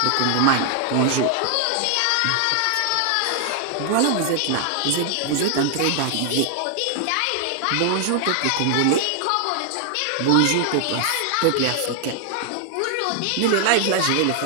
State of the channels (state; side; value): different; both; correlation 0.00